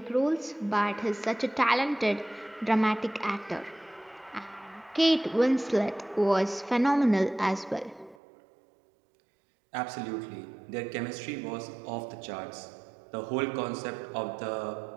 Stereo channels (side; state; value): left; drops out; at 8.2 s